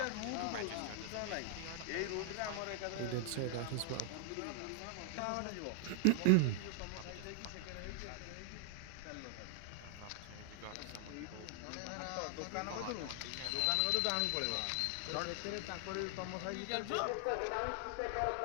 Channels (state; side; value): different; both; correlation -0.01